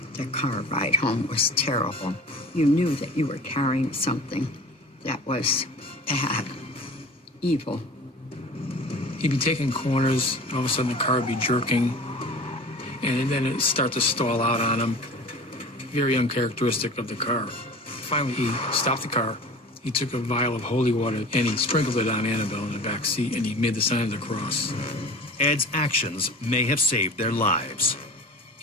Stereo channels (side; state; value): both; normal; correlation 0.39